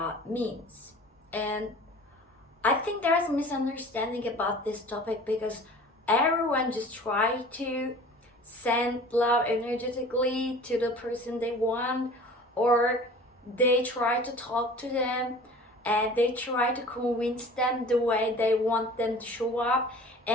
means? And I think there's a misunderstanding about this topic because everyone just try to send love energetically to the person they want, or they try to talk to them and they try to convince them the way they want them to show up,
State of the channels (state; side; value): normal; both; correlation 0.43